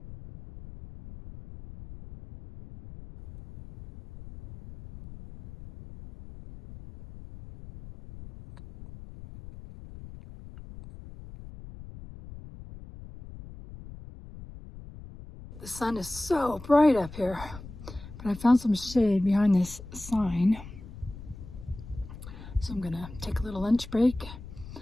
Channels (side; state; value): left; noise; rumble, 15 dB below the sound